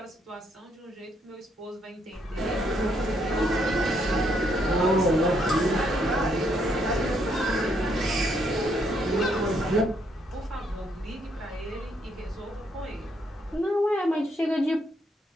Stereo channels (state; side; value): normal; both; correlation 0.73